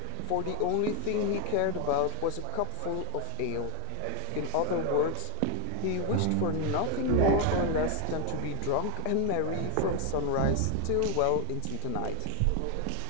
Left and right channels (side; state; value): both; different; correlation 0.01